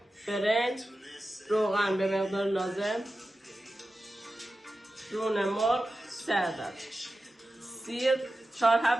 برنج، روغن به مقدار لازم، رون مرغ 3 عدد، سیر 4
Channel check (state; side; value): normal; both; correlation 0.93